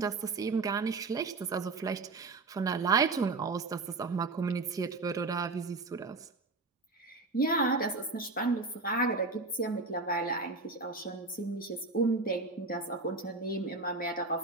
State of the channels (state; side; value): quieter; left; 3.7 dB